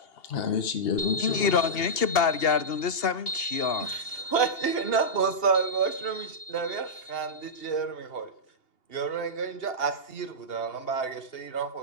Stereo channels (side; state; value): right; late; 2.8 ms